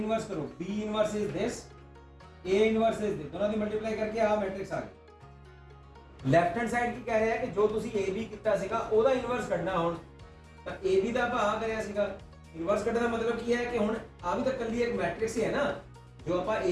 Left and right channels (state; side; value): identical; both; correlation 1.00